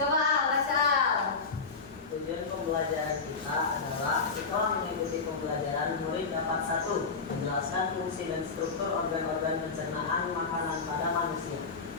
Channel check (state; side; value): quieter; right; 4.6 dB